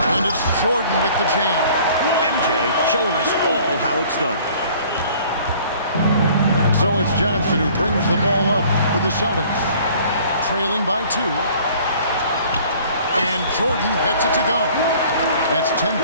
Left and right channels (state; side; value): inverted; both; correlation -0.53